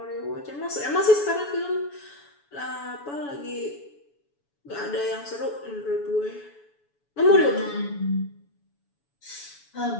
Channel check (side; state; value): right; late; 7.0 ms